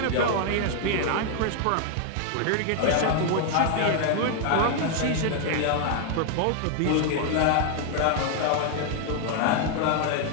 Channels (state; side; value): different; both; correlation 0.00